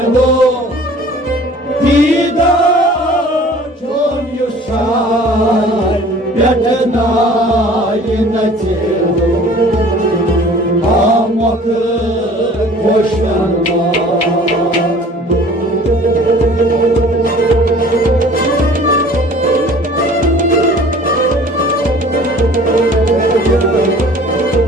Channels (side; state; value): both; normal; correlation 0.48